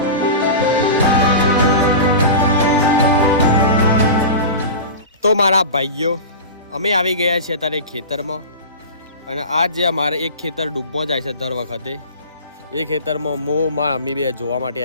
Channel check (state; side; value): inverted; both; correlation -0.30